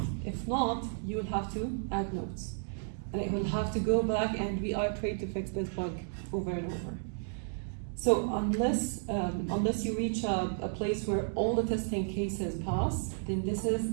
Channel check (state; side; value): silent; left; digital silence